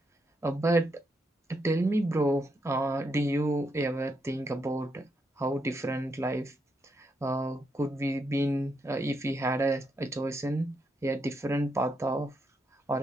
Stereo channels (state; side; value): normal; both; correlation 0.80